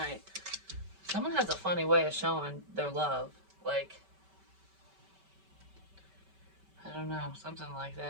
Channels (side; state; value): left; late; 5.2 ms